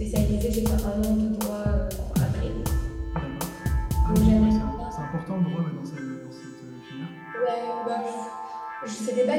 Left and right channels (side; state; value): both; identical; correlation 1.00